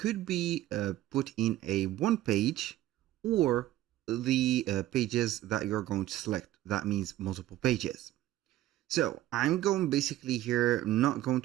be put in a one page or the pages that you're going to select. That means multiple pages. So I'm going basically here, not going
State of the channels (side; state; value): left; quieter; 14.5 dB